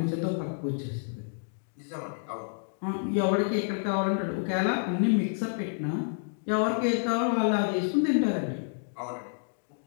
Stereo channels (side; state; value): right; silent; digital silence